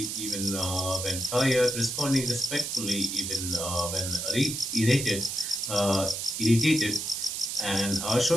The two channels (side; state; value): right; noise; hiss, 4 dB below the sound